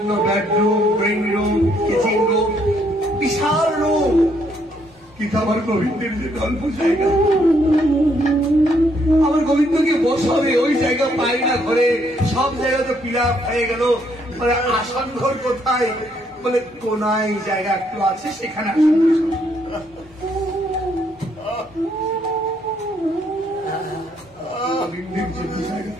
bedroom, drawing room, kitchen room, বিশাল রুম, কিন্তু আমার গোবিন্দের যে অল্প জায়গা, আমার গোবিন্দকে বসাবে ওই জায়গা পাই না ঘরে। সব জায়গা তো পিলা হয়ে গেল, মানে আসন ঘর কোথায়? বলে কোনায় জায়গা একটু আছে, সেখানে আসন গোবিন্দের জন্য জায়গা।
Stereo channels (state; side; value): normal; both; correlation 0.71